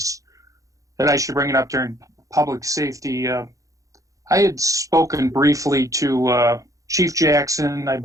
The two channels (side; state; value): left; late; 0.16 ms